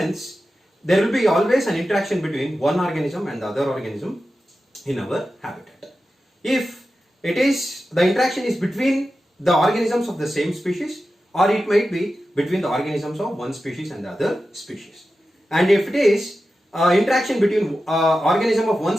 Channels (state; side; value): normal; both; correlation 0.92